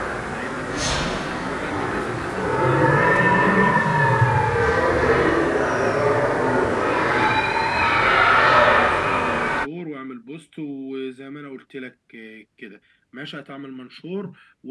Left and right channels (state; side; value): identical; both; correlation 1.00